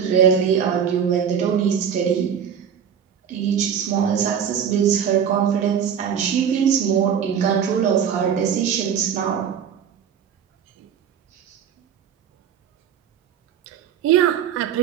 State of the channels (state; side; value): quieter; left; 8.1 dB